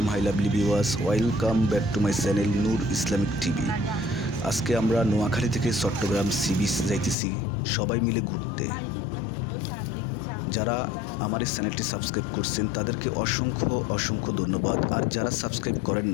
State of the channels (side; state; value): right; drops out; at 7.2 s